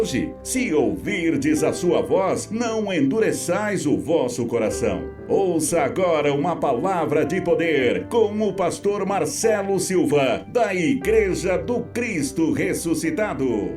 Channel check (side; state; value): both; identical; correlation 1.00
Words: se ouvirdes a sua voz, não endureçais o vosso coração. Ouça agora uma palavra de poder com o pastor Marcelo Silva, da Igreja do Cristo Ressuscitado.